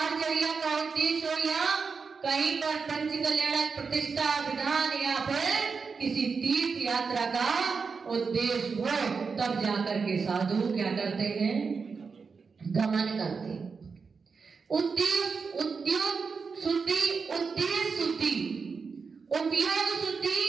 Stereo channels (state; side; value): quieter; left; 5.1 dB